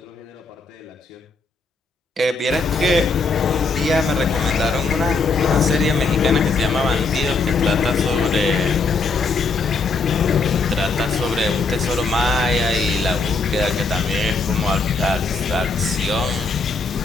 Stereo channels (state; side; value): quieter; right; 4.0 dB